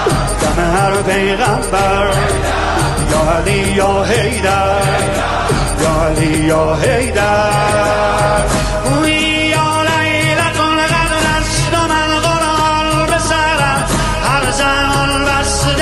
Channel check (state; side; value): identical; both; correlation 1.00